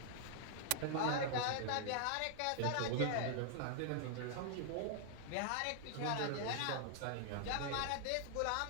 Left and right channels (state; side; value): different; both; correlation 0.00